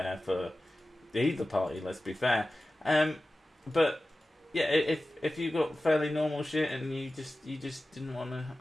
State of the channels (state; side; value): normal; both; correlation 0.95